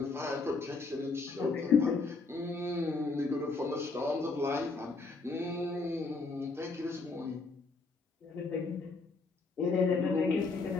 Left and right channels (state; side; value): quieter; right; 3.9 dB